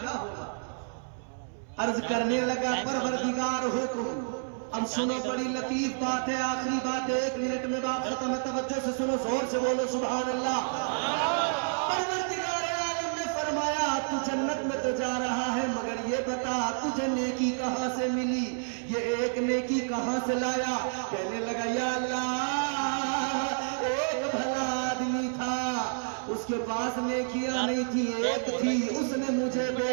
ہوگا. عرض کرنے لگا پروردگار حکم. اب سنو بڑی لطیف بات ہے, آخری بات ہے, 1 منٹ میں بات ختم ہے, توجہ سے سنو, زور سے بولو سبحان اللہ. پروردگار عالم نے فرمایا تو جنت میں تو جا رہا ہے, مگر یہ بتا تجھے نیکی کہاں سے ملی, یہ ایک نیکی کہاں سے لایا. کہنے لگا یا اللہ ایک بھلا آدمی تھا, اس کے پاس نیکیاں نہیں تھی, ایک تھی, اس نے مجھے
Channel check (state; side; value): silent; left; 58 dB below the other